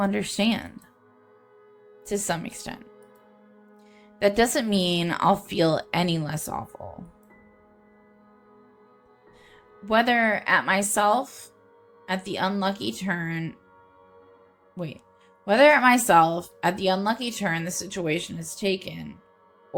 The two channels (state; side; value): identical; both; correlation 1.00